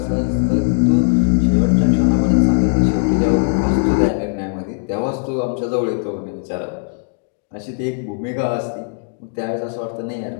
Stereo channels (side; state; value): right; silent; digital silence